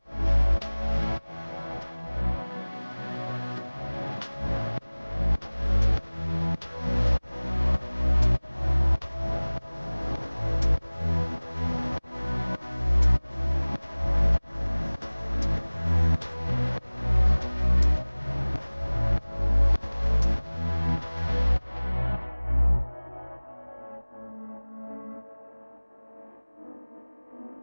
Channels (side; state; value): both; inverted; correlation -1.00